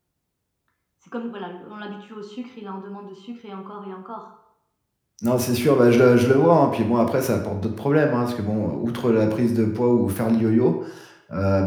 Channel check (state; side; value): identical; both; correlation 1.00